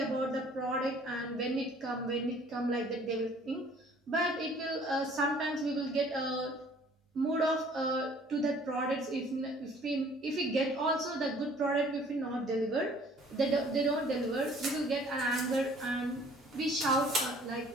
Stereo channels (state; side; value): normal; both; correlation 0.55